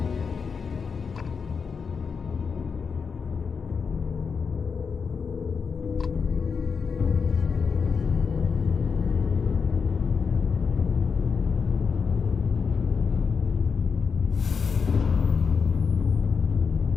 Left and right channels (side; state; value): right; quieter; 5.7 dB